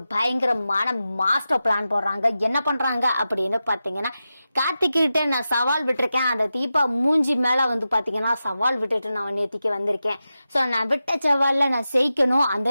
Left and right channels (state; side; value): inverted; both; correlation -0.92